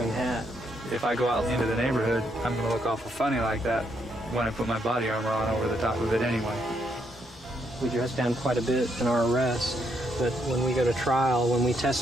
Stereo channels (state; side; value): normal; both; correlation 0.75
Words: hat. If I go out into the neighborhood, I'm going to look awful funny like that when I put my body armor on over the top of it anyway. We dress down quite a bit in our arrests, but when we go to trial, when we